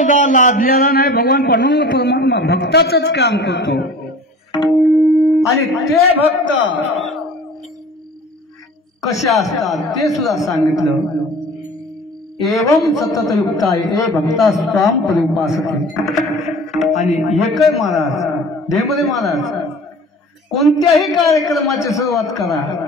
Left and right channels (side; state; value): both; normal; correlation 0.42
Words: लादलेला नाही. भगवान पांडुरंग परमात्मा भक्ताचंच काम करतो. आणि ते भक्त कसे असतात ते सुद्धा सांगितलं. एवं सतत युक्ता ए भक्ता स्वाम परिउपासते. आणि एकय महाराज देवदेव महाराज कोणत्याही कार्यक्रमाची सुरुवात करा